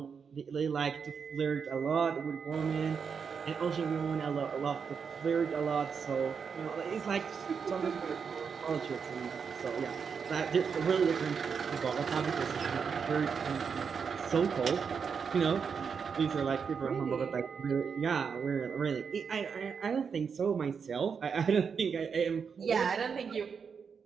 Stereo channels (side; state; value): left; quieter; 6.2 dB